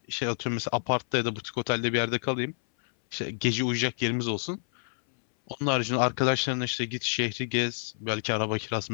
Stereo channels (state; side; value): silent; right; 58 dB below the other